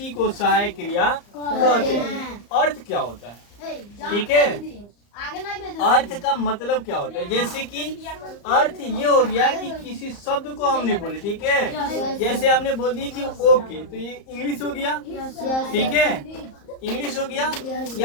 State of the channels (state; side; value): late; right; 34 ms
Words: को सहायक क्रिया कहते हैं। अर्थ क्या होता है, ठीक है, अर्थ का मतलब क्या होता है, जैसे कि अर्थ ये हो गया कि किसी शब्द को हमने बोले, ठीक है, जैसे हमने बोल दिया कि ओके, तो ये इंग्लिश हो गया, ठीक है, इंग्लिश हो गया,